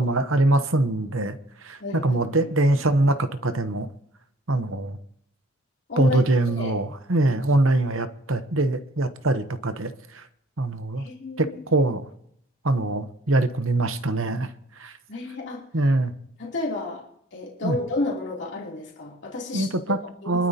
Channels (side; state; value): both; normal; correlation 0.56